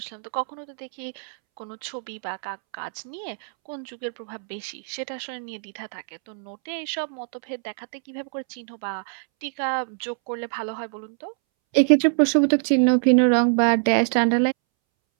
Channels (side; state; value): left; silent; 62 dB below the other